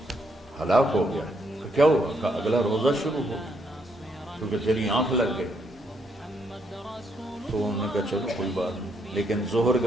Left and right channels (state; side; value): normal; both; correlation 0.75